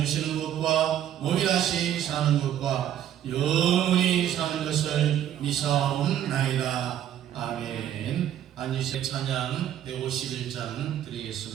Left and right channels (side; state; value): left; quieter; 10.9 dB